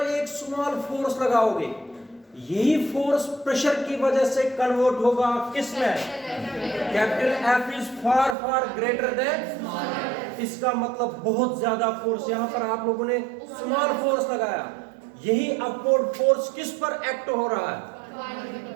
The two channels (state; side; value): drops out; left; at 8.3 s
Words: एक स्मॉल फोर्स लगाओगे, यही फोर्स प्रेशर की वजह से कन्वर्ट होगा किसमें? Capital F is far far greater than small f। इसका मतलब बहुत ज्यादा फोर्स, यहां पर आप लोगों ने स्मॉल फोर्स लगाया, यही अपवर्ड फोर्स किस पर एक्ट हो रहा है,